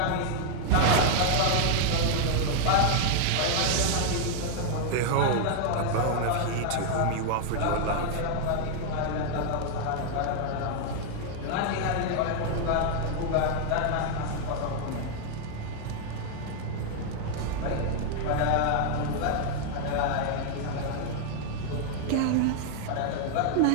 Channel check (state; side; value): different; both; correlation 0.00